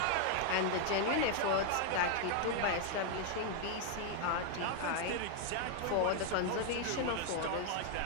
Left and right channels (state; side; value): different; both; correlation 0.00